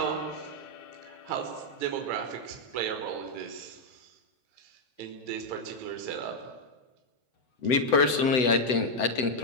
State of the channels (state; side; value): late; right; 7.9 ms